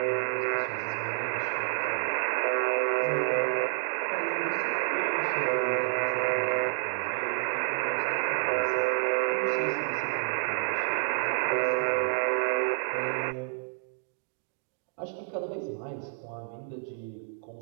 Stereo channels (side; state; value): left; silent; digital silence